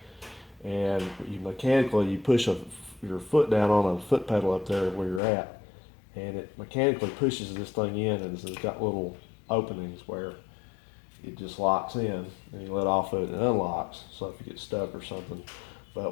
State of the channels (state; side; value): drops out; right; at 5.2 s